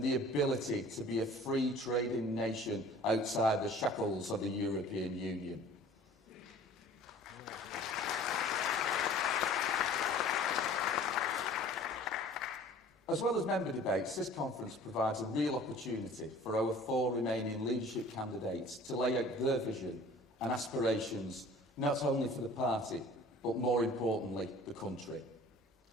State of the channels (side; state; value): both; normal; correlation 0.47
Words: the ability to be a free trading nation outside the shackles of the European Union. As well as member debates, this conference provides a real opportunity for our 4 remaining leadership candidates to lay out their vision and aspirations, not only for the party, but more importantly, the country.